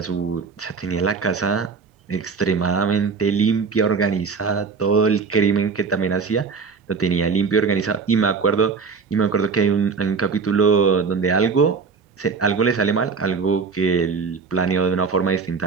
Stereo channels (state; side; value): quieter; left; 5.1 dB